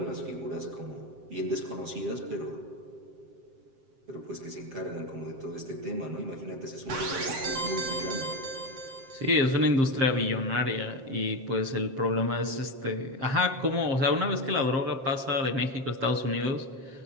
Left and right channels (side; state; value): left; late; 7.6 ms